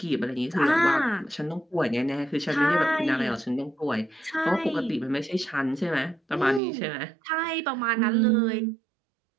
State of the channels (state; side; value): drops out; left; at 6.6 s